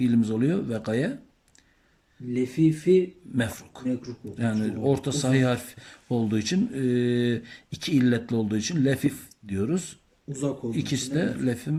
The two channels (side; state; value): both; identical; correlation 1.00